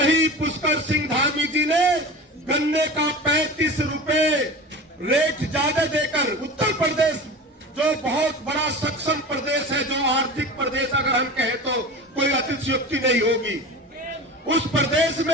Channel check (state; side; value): normal; both; correlation 0.32